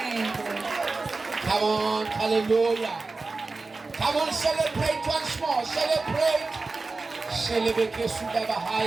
Come on, hallelujah. Come on, celebrate once more. Celebrate. Celebrate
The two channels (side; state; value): left; quieter; 3.8 dB